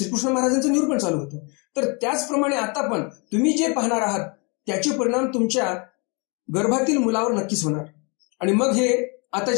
महाराजांचं निरूपण चालू होतं, तर त्याचप्रमाणे आता पण तुम्ही जे पाहणार आहात त्याचे परिणाम तुमच्या गर्भातील मुलावर नक्कीच होणार. आणि मग हे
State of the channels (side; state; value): right; quieter; 32.5 dB